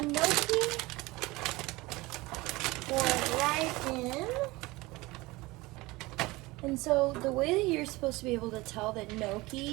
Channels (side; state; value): left; quieter; 21.4 dB